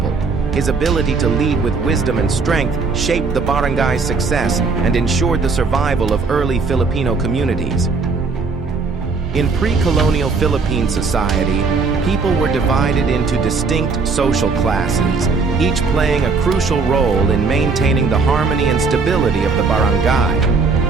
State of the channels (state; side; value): quieter; left; 4.5 dB